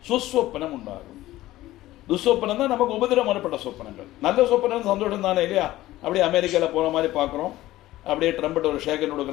சுஸ்வப்பனம் உண்டாகும். துஸ்வப்பனம் தான் நமக்கு உபதிரம் வரப்பட்ட சொப்பனங்கள். நல்ல சொப்பனம் சந்தோஷம் தானே இல்லையா? அப்படியே அமெரிக்காவில் போகிற மாதிரி பார்க்குறோம், அப்படியே ட்ரம்பட் ஒரு ஷேகன்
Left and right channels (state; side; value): quieter; right; 16.1 dB